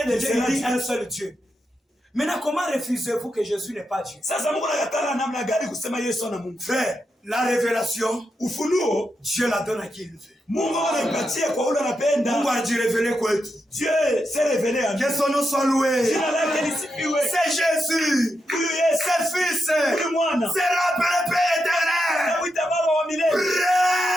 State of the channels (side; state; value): both; normal; correlation 0.85